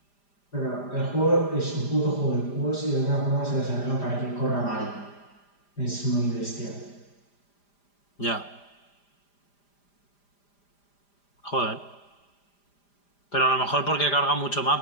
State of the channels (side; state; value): right; late; 5.0 ms